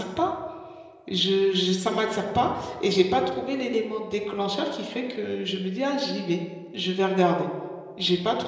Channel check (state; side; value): identical; both; correlation 1.00